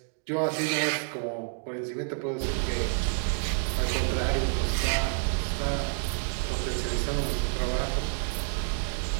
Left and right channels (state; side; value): silent; left; 59 dB below the other